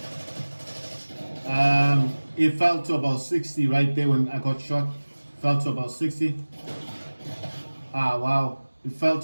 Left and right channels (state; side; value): inverted; both; correlation -1.00